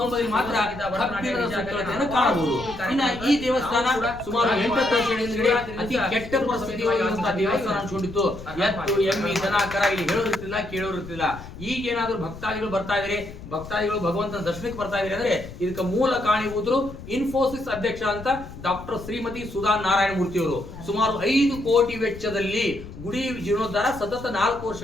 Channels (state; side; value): noise; left; rumble, 14 dB below the sound